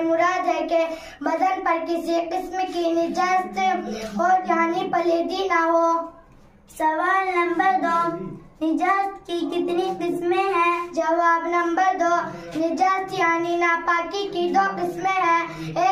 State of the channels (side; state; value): both; identical; correlation 1.00